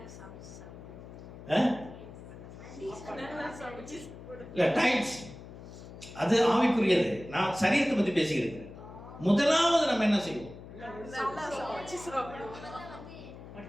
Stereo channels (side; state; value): left; noise; hum, 15 dB below the sound